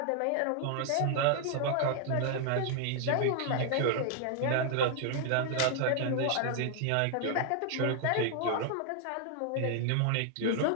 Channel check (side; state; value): both; different; correlation 0.00